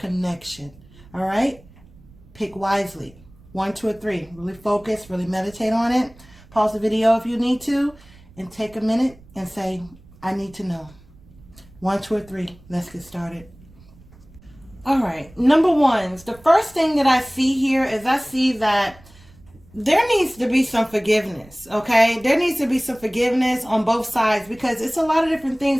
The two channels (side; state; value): right; noise; rumble, 24 dB below the sound